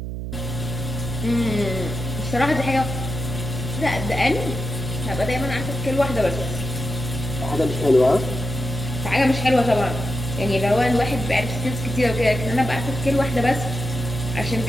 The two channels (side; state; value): right; noise; hum, 6 dB below the sound